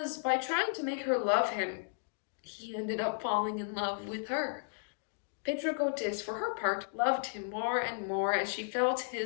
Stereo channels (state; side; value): silent; right; digital silence